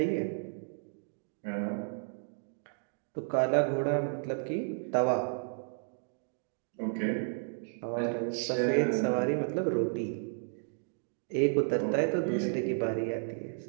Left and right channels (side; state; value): left; silent; digital silence